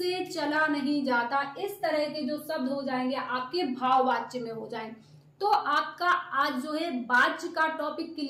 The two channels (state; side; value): identical; both; correlation 1.00